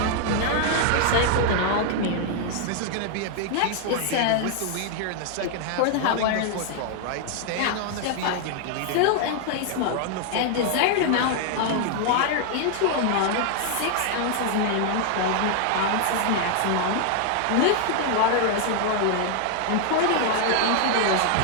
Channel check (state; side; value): different; both; correlation 0.00